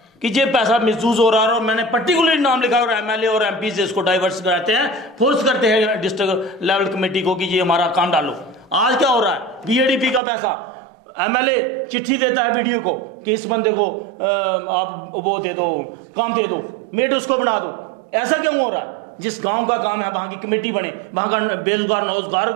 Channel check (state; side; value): drops out; left; at 10.2 s